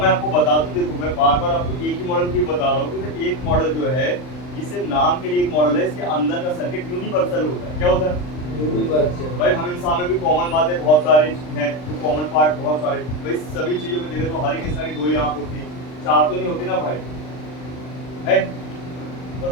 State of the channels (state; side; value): late; right; 39 ms